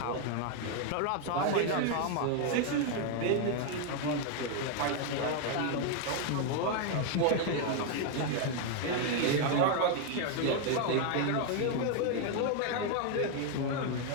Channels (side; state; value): both; different; correlation 0.01